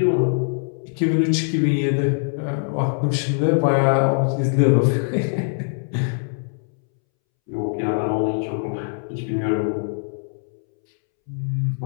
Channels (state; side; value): silent; right; 64 dB below the other